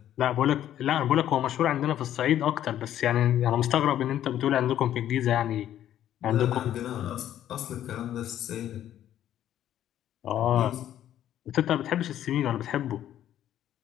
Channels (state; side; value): quieter; right; 11.5 dB